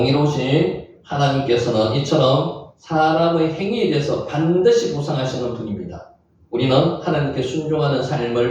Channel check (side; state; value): both; identical; correlation 1.00